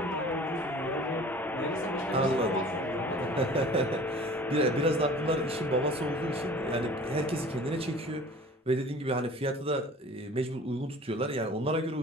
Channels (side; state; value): both; normal; correlation 0.45